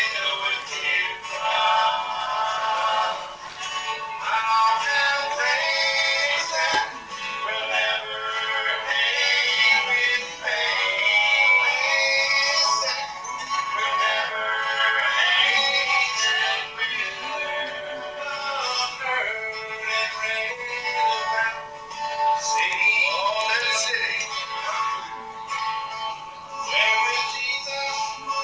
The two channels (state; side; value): identical; both; correlation 1.00